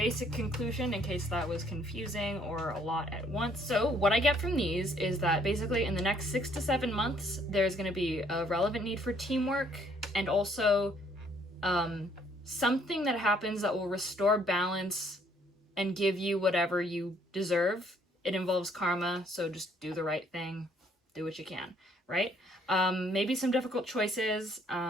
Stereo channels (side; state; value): both; normal; correlation 0.65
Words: conclusion in case that was confusing or a lot at once. So what I get from these is that basically in the next 6 to 7 months, there's going to be a relevant need for teamwork and also something that happens that will restore balance and give you whatever you deserve. It involves karma, so just do the right thing, do what you can, right? Maybe some difficult choices.